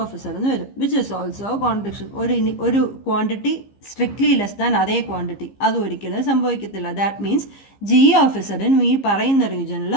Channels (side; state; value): right; late; 15 ms